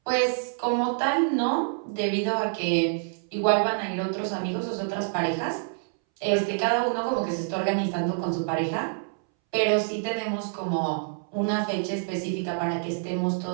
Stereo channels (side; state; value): left; silent; 60 dB below the other